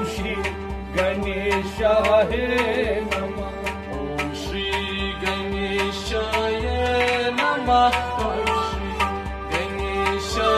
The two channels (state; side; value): identical; both; correlation 1.00